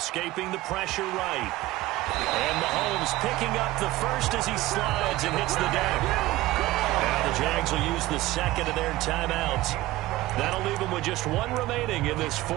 the pressure right. And Mahomes picking up the first as he slides and hits the deck. Now the Jags will use the 2nd of their timeouts. That'll leave them with just 1 remaining in this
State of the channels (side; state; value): left; quieter; 17.5 dB